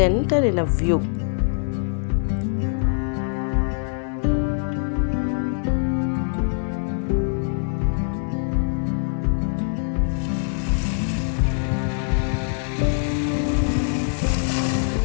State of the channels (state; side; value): silent; right; digital silence